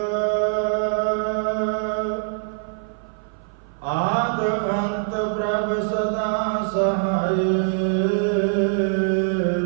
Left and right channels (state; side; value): silent; left; 58 dB below the other